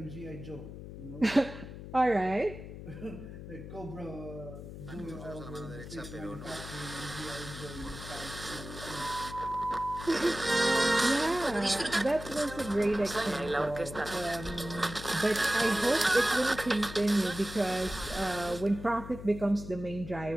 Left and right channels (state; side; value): noise; left; hum, 11 dB below the sound